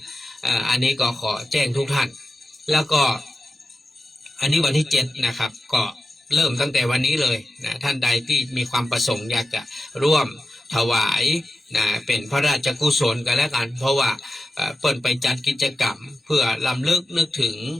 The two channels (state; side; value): normal; both; correlation 0.92